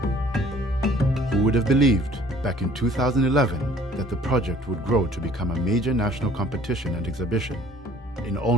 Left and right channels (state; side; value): normal; both; correlation 0.55